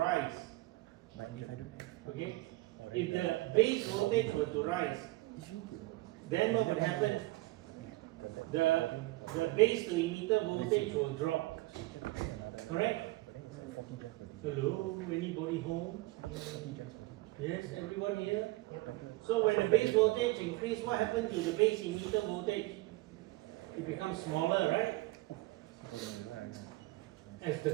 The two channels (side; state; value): left; quieter; 20.4 dB